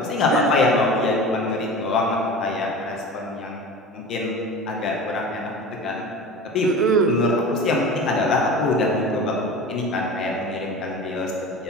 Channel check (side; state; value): both; normal; correlation 0.34